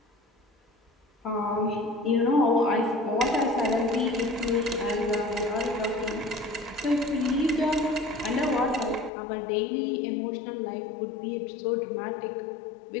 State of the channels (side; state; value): right; drops out; at 9.1 s